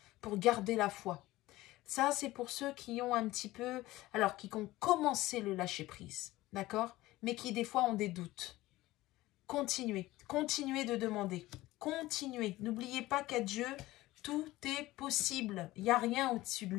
Pour garder la foi. Ça, c'est pour ceux qui ont un petit peu... Alors, qui ont commencé le lâcher-prise, d'accord? Mais qui, des fois, ont des doutes. Continuez. Continuez de demander. Continuez. N'oubliez pas qu'à Dieu, tout est possible. Il n'y a rien au-dessus de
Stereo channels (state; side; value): quieter; right; 17.7 dB